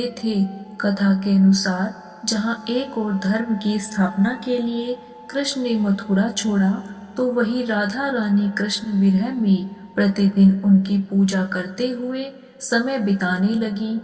थे। कथा के अनुसार जहाँ एक और धर्म की स्थापना के लिए कृष्ण ने मथुरा छोड़ा, तो वही राधा रानी कृष्ण विरह में प्रतिदिन उनकी पूजा करते हुए समय बिताने लगी।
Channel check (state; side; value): identical; both; correlation 1.00